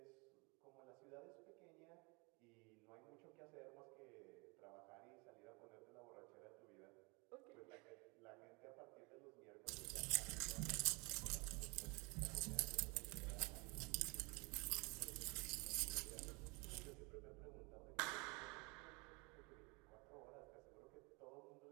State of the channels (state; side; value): quieter; left; 29.3 dB